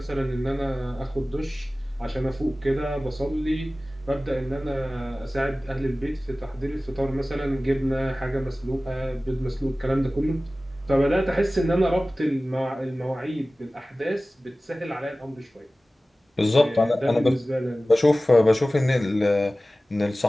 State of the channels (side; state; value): both; normal; correlation 0.97